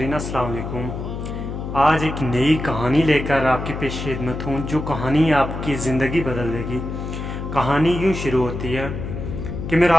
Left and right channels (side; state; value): left; noise; hum, 6 dB below the sound